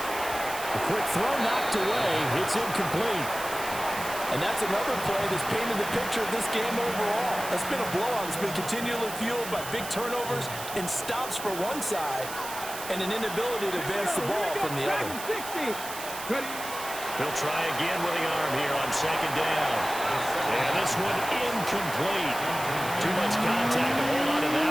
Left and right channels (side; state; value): right; noise; hiss, 10 dB below the sound